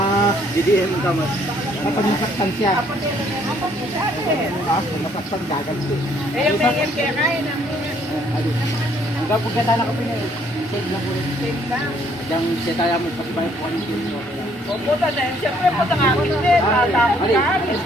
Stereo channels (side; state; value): both; normal; correlation 0.65